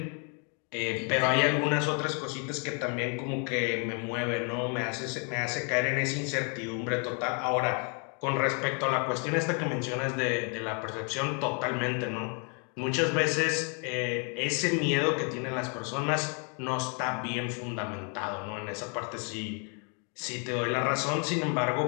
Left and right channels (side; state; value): right; quieter; 38.2 dB